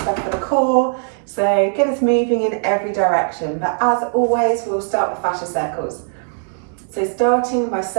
for the core. So get us moving in every direction. But as always, we'll start with fascia circles. So starting by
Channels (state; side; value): silent; left; 66 dB below the other